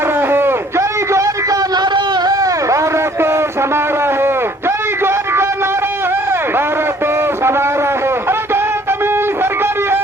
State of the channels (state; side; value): normal; both; correlation 0.57